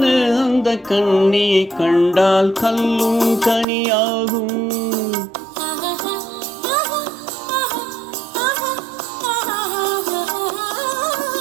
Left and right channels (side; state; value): left; drops out; at 3.7 s